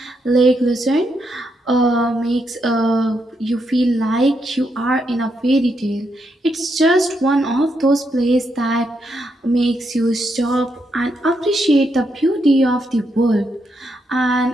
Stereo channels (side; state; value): both; normal; correlation 0.80